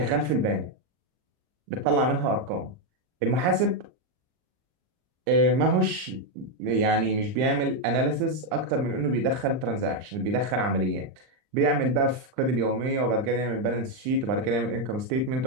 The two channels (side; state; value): left; late; 39 ms